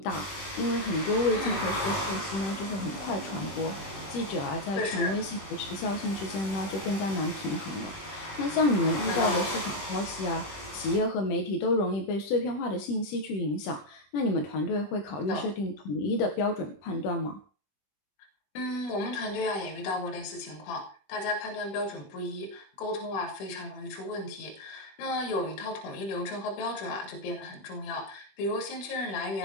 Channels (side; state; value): right; late; 21 ms